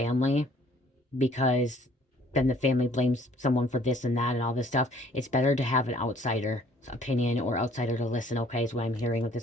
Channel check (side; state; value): both; normal; correlation 0.58